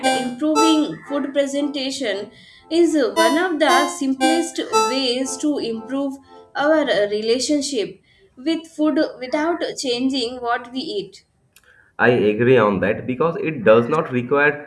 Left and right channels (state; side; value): identical; both; correlation 1.00